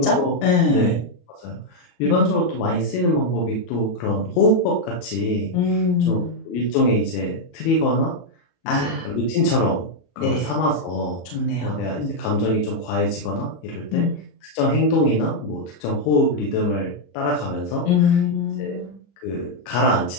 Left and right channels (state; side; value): late; right; 33 ms